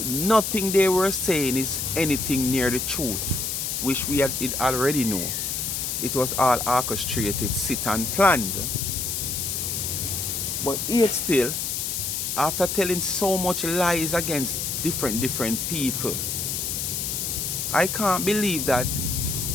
nothing they were saying is anything near the truth, which we had it already know. It was all orchestrated, set and planned. But yet still, after telling so much lies against different people, I can't believe that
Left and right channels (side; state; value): left; noise; hiss, 2 dB below the sound